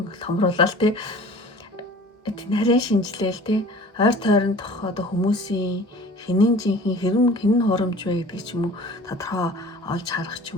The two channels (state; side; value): normal; both; correlation 0.44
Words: томруулаад тий. Тийм нарийн шинжилээл тий. Ойр тойрондох одоо хүмүүсийн хинэн жинхэнэ хинэн хурамч вэ гэдэг ч юм уу тодорхой олж харах